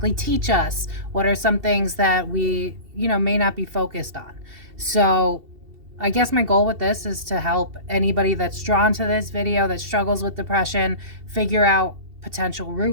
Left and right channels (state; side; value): late; left; 2.7 ms